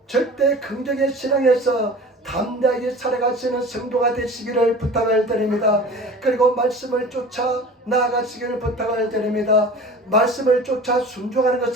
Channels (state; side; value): normal; both; correlation 0.39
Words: 절대 긍정의 신앙에서 담대하게 살아가시는 성도가 되시기를 부탁을 드립니다. 그리고 말씀을 쫓아 나아가시기를 부탁을 드립니다. 말씀을 쫓아 순종하는